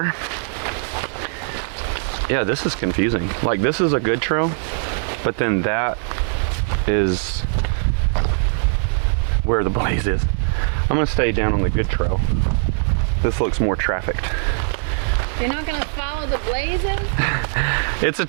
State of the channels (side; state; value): left; silent; digital silence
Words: Yeah, this is confusing. Like, this is a good trail, but then that is where the blaze is. I'm gonna stay down on the good trail. This looks more trafficked. You're not gonna follow the blazes? It's a